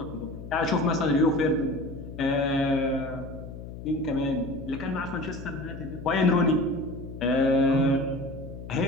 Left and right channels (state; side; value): noise; left; hum, 11 dB below the sound